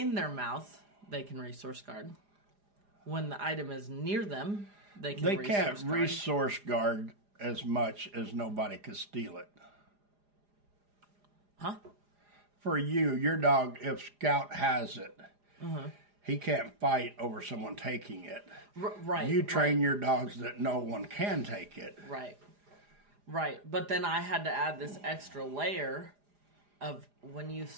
their mouth, they can resource guard. When the item is near them, they They can't resource guard. resource guard as much as nobody could steal it. Huh? For you, your dog, if Scout has it, he can't fight over someone taking it. Right. You train your dogs that no one can take it. Right. Right. But then I had to add this extra layer of when you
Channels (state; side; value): late; left; 4.9 ms